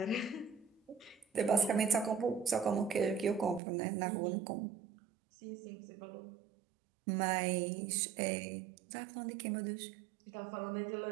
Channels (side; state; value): left; drops out; at 3.6 s